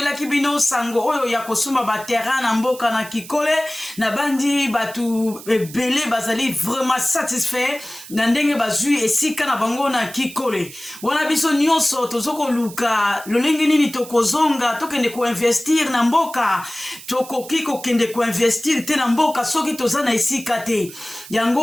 bino sango oyo ya kosumba ba terrain na mboka na Kikole na bandi batu ebele bazali vraiment satisfait na ndenge bazui esika na bango na Kikole wana biso nyonso tozoko luka lolenge nini tokozonga tokende ko investir na mboka tokoki kokende ko investir te na mboka soki tozana esika te yango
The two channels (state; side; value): noise; right; hiss, 16 dB below the sound